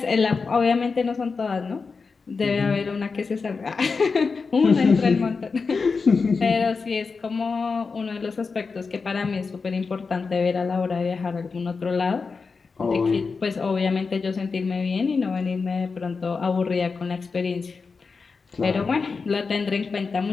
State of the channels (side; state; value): right; quieter; 4.7 dB